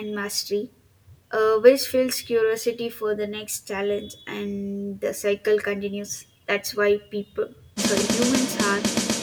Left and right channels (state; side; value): identical; both; correlation 1.00